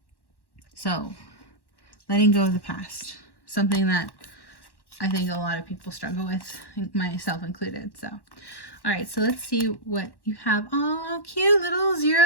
so letting go of the past, something that I think a lot of people struggle with, myself included. So all right, so let's see what you have. Oh, cute little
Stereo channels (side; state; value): right; late; 1.1 ms